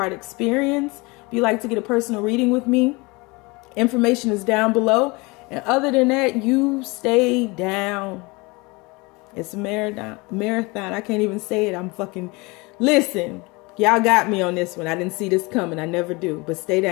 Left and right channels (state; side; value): quieter; right; 25.7 dB